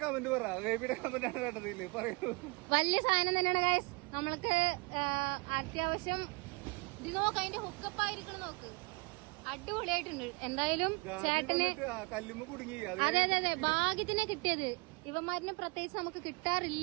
കമന്റ് പറ. ബേബിയുടെ കമന്റ് ആണ് കേട്ടതില്ലേ, പറയൂ. വലിയ സാധനം തന്നെയാണ് ഗൈസ്. നമ്മൾക്ക് അത്യാവശ്യം ഇത് നോക്ക്, അതിന്റെ ഹുക്കപ്പ് ആയിരിക്കണം നോക്ക്. അടിപൊളിയായിട്ടുണ്ട്. എന്തായാലും ചേട്ടന് കല്ലുമ്മ കുടുങ്ങി. അതെ അതെ അതെ, ഭാഗ്യത്തിനെ കിട്ടിയത്. ഇവന്മാരിനെ പ്രത്യേകിച്ച് നമുക്ക്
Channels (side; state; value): left; quieter; 27.3 dB